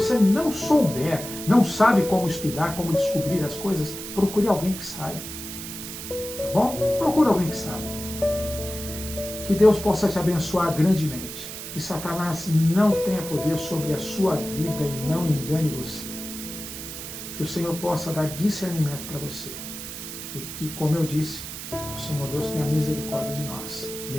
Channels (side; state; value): right; noise; hiss, 9 dB below the sound